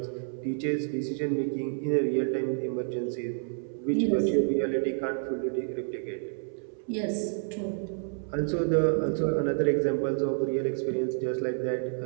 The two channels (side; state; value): left; silent; 58 dB below the other